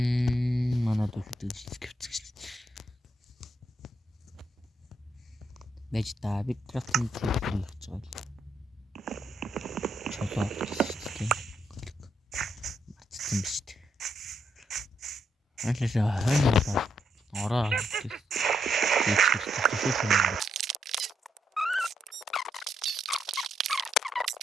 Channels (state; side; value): normal; both; correlation 0.78